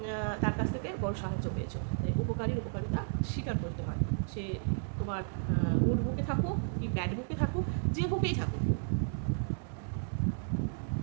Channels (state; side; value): silent; left; 56 dB below the other